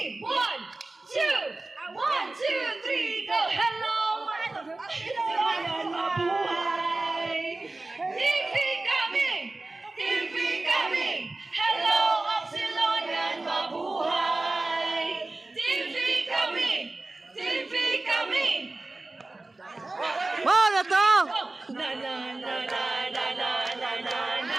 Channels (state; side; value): quieter; left; 3.1 dB